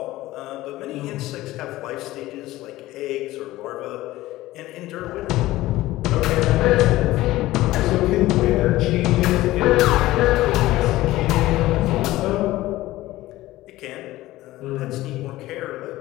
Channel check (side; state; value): right; quieter; 16.9 dB